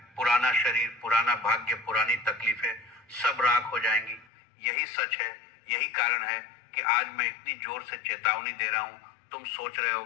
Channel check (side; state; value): right; drops out; at 4.2 s